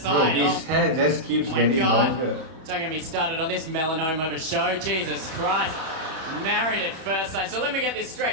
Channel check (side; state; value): left; late; 31 ms